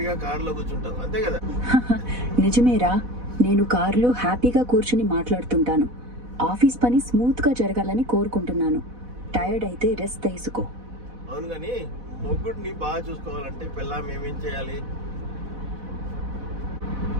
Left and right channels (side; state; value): left; late; 4.1 ms